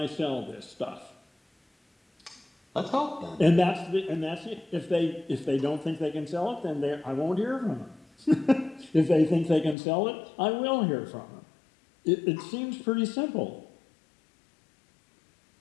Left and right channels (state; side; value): drops out; right; at 9.8 s